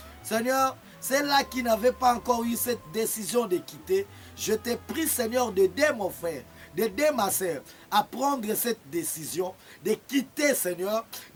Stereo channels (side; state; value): both; identical; correlation 1.00